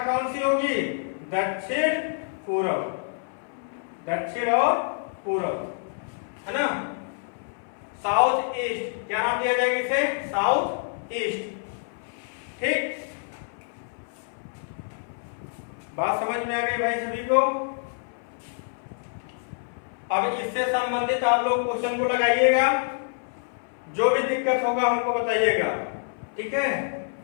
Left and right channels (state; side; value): silent; right; 60 dB below the other